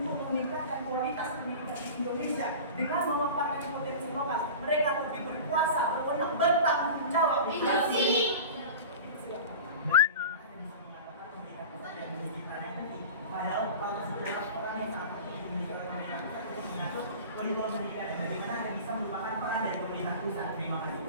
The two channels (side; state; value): both; inverted; correlation -0.34